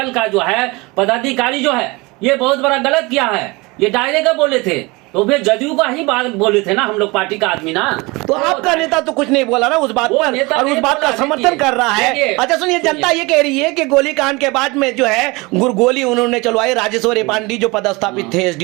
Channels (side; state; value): left; quieter; 24.6 dB